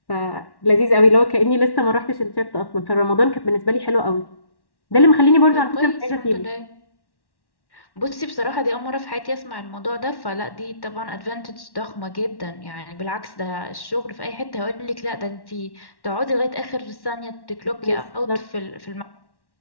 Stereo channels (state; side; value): late; right; 1.1 ms